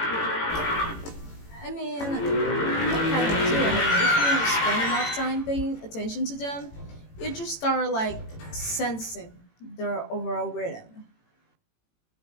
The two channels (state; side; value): late; right; 18 ms